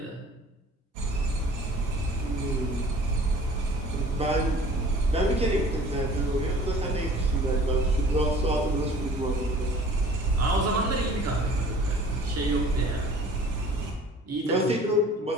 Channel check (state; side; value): normal; both; correlation 0.49